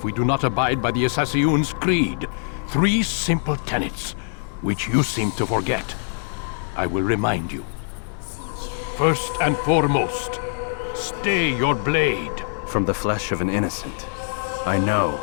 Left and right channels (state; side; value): silent; right; digital silence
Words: we do not abide by the Assassin's creed. 3 simple tenets, which you seem to forget. I will remind you. First and foremost, stay your blade. From the flesh of an innocent. I know.